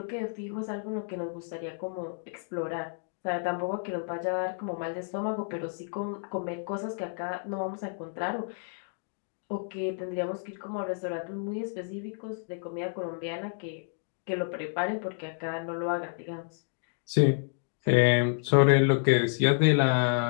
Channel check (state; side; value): silent; right; digital silence